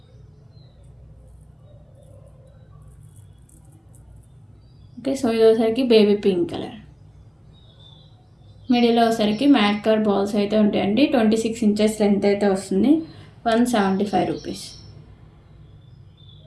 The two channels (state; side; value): identical; both; correlation 1.00